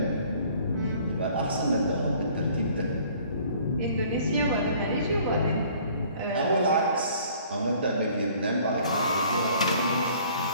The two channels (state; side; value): inverted; both; correlation -0.55